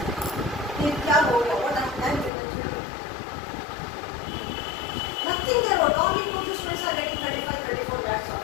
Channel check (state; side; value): drops out; right; at 2.3 s